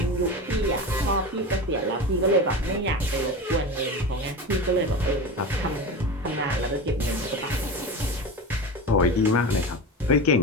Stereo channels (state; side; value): normal; both; correlation 0.26